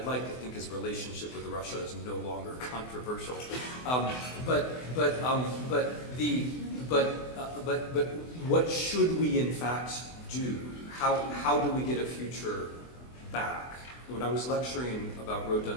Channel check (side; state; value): right; late; 24 ms